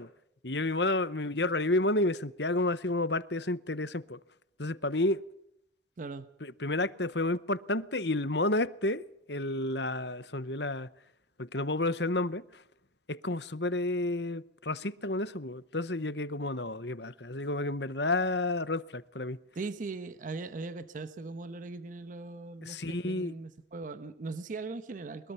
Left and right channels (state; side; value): normal; both; correlation 0.16